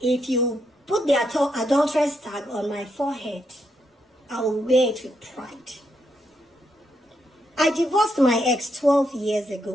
If you put the adulteress tag on my forehead, I will wear it with pride. I divorced my ex 12 years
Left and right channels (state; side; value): normal; both; correlation 0.79